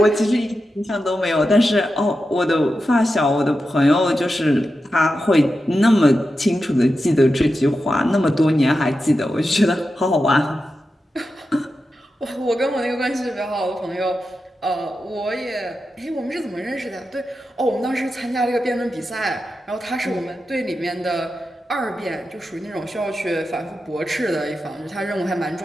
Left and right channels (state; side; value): normal; both; correlation 0.90